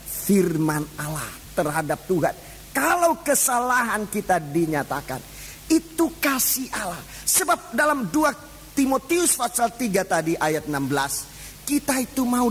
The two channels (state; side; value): identical; both; correlation 1.00